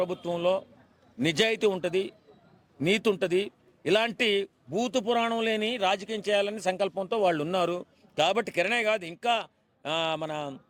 నిజాయితీ ఉంటుంది, నీతి ఉంటుంది. ఇలాంటి భూత పురాణం లేని రాజకీయం చేయాలని సంకల్పంతో వాళ్ళు ఉన్నారు. కాబట్టి కిరణే కాదు, ఇంకా మన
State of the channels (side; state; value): both; identical; correlation 1.00